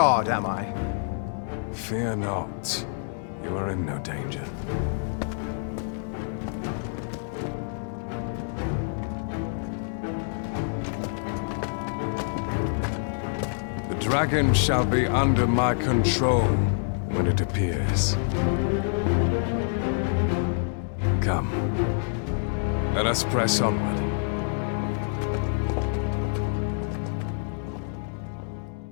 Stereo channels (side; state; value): right; silent; digital silence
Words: am I? Fear not. You are in no danger. The dragon shall be under my control when it appears. Come. Let us press onward.